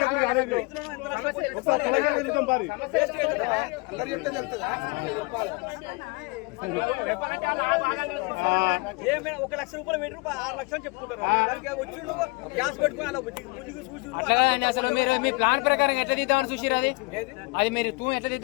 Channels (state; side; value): quieter; right; 27.9 dB